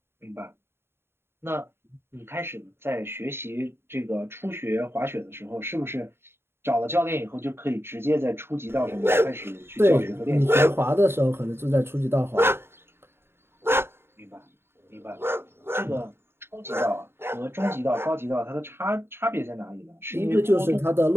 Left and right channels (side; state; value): left; late; 0.11 ms